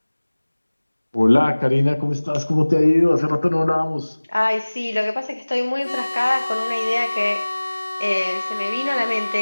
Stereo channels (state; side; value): inverted; both; correlation -1.00